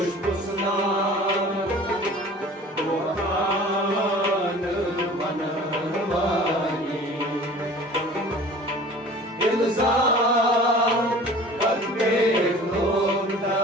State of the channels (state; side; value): normal; both; correlation 0.44